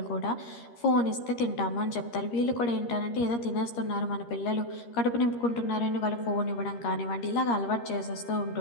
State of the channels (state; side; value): late; right; 13 ms